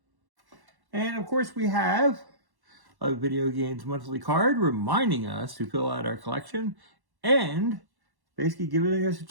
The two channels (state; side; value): late; left; 1.1 ms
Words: And of course we have a Video Games Monthly card reminding us to fill out our collection and basically giving us a